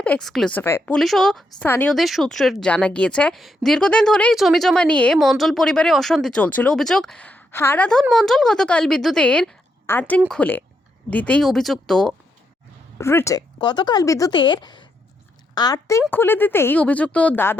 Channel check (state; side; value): normal; both; correlation 0.80